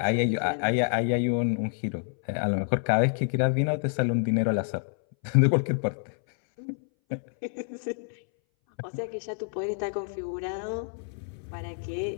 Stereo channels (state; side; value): silent; right; 59 dB below the other